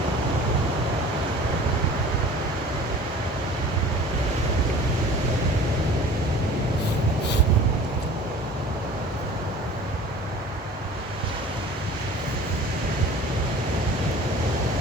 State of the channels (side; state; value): both; normal; correlation 0.44